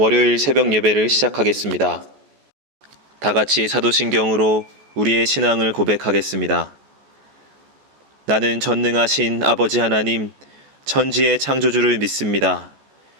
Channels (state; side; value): late; left; 14 ms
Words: 새벽 예배를 시작하겠습니다. 다 같이 사도신경으로 우리의 신앙을 고백하겠습니다. 나는 전능하신 아버지 하나님, 천지의 창조주를 믿습니다.